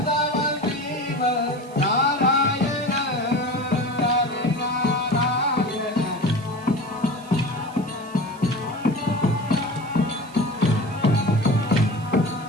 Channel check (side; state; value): right; noise; hiss, 24 dB below the sound